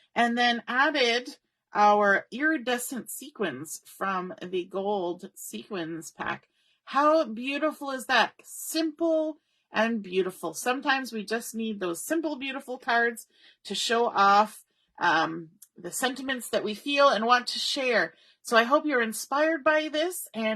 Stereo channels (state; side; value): identical; both; correlation 1.00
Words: and then added our iridescent sequins from the gold sequins pack. How beautiful is that? Simple and beautiful. Sometimes we just need those simple, beautiful cards to show off the sentiments that we feel and want to share. So I hope you're inspired by this,